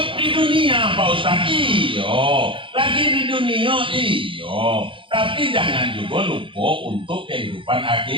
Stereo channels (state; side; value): late; left; 0.25 ms